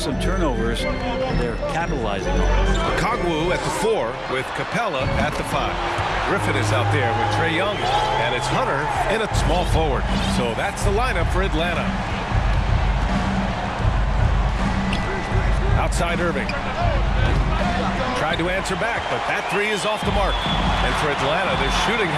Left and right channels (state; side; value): identical; both; correlation 1.00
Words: turnovers. They're capitalizing on it. Kongwu at the 4 with Capella at the 5. Griffin is out there with Trae Young, and it's Hunter in a small forward. So that's the lineup for Atlanta. Outside Irving. Tried to answer back, but that 3 is off the mark. And for Atlanta, their shooting